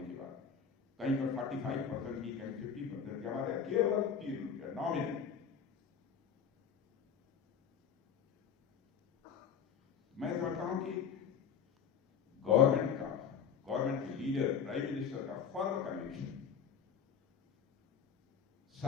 के बाद कहीं पर 45% की, कहीं 50% की, हमारे यहाँ केवल 3 रुपया नॉमिनल। मैं समझता हूं कि गवर्नमेंट के लीडर, प्राइम मिनिस्टर का फर्म कन्विक्शन,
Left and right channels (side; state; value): right; quieter; 7.3 dB